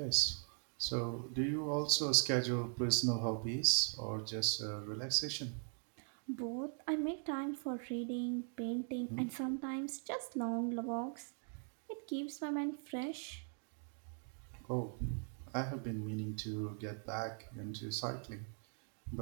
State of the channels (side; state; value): left; silent; 51 dB below the other